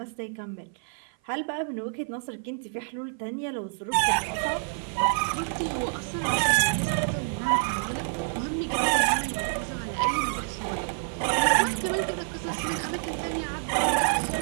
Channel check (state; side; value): silent; left; 55 dB below the other